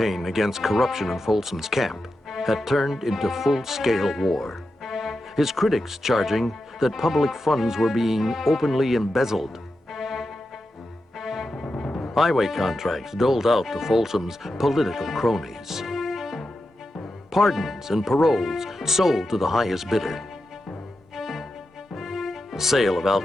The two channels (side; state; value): both; normal; correlation 0.89